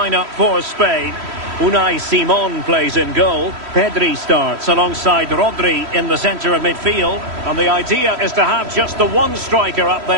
for Spain. Unai Simon plays in goal. Pedri starts alongside Rodri in the centre of midfield. And the idea is to have just the one striker up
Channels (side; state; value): left; late; 3.1 ms